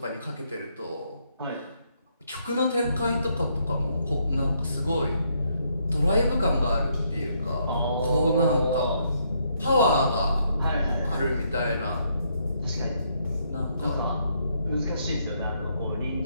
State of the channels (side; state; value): both; inverted; correlation -0.73